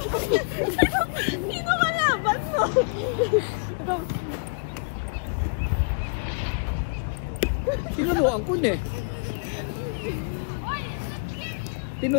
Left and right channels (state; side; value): quieter; right; 35.1 dB